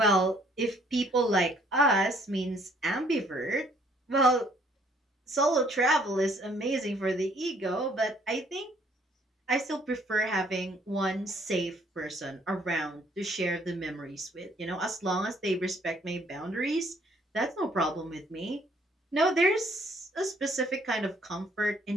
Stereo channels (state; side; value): normal; both; correlation 0.63